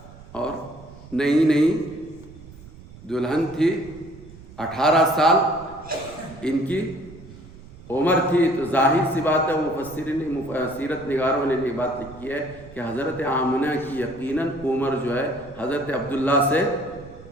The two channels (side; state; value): right; noise; rumble, 19 dB below the sound